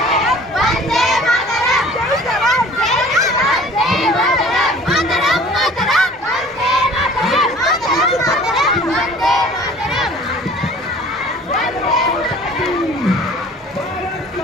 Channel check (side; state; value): both; normal; correlation 0.48